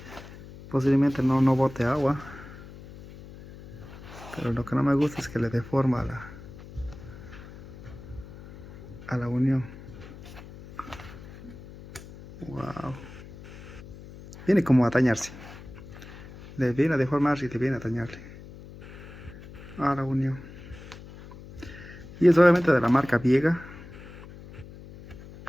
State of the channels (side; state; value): left; noise; hum, 16 dB below the sound